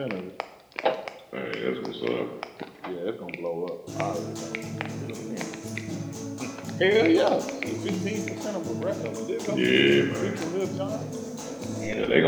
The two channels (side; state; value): both; identical; correlation 1.00